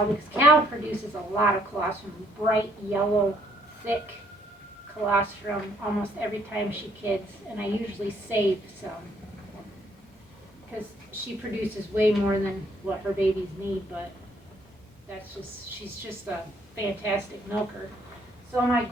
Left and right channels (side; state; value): both; normal; correlation 0.67